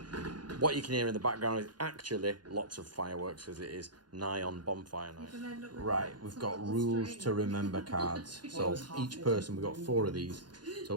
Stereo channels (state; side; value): late; left; 0.70 ms